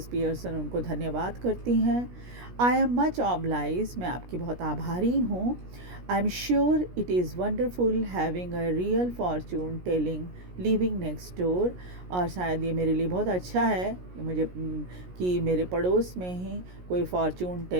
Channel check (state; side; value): late; left; 17 ms